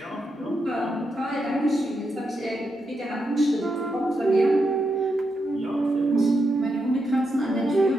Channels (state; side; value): normal; both; correlation 0.84